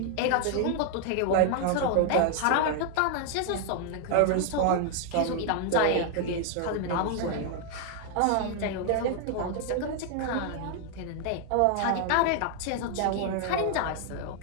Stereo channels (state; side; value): different; both; correlation 0.00